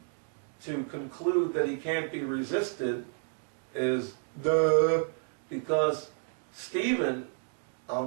to conclude that he can't be resisted is duh, because Stephen, I'll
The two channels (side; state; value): left; silent; 57 dB below the other